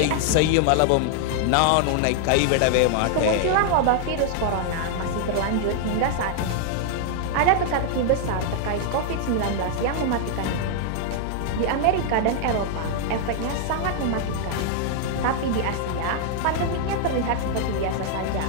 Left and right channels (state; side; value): different; both; correlation 0.00